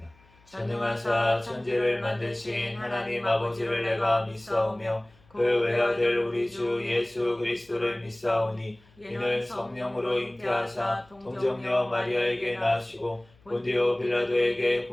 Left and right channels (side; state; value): left; noise; hum, 30 dB below the sound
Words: 전능하사 천지를 만드신 하나님 아버지를 내가 믿사오며 그 외아들 우리 주 예수 그리스도를 믿사오니 이는 성령으로 잉태하사 동정녀 마리아에게 낳으시고 본디오 빌라도에게